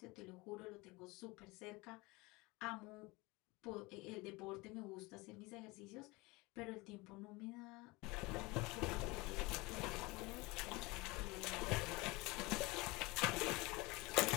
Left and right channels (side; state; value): right; quieter; 23.8 dB